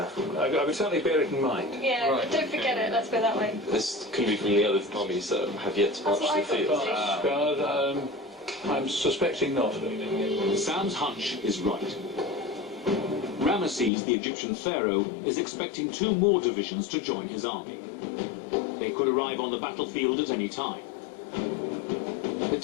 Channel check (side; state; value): right; drops out; at 13.9 s